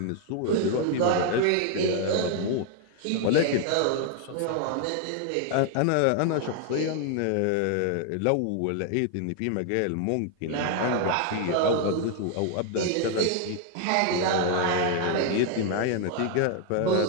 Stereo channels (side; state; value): both; different; correlation 0.00